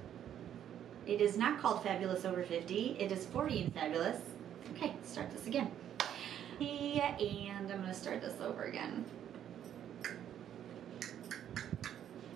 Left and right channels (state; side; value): quieter; left; 10.1 dB